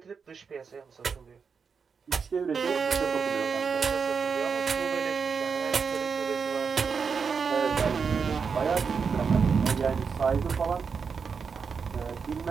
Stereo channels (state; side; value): quieter; left; 5.8 dB